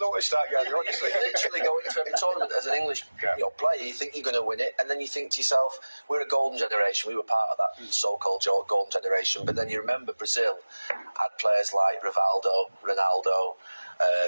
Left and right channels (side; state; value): both; inverted; correlation -1.00